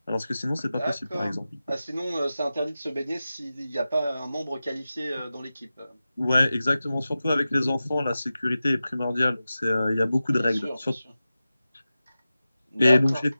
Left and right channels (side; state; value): both; inverted; correlation -0.94